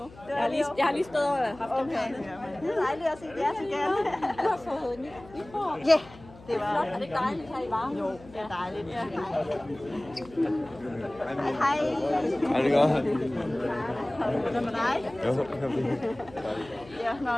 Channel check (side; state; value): left; noise; hum, 21 dB below the sound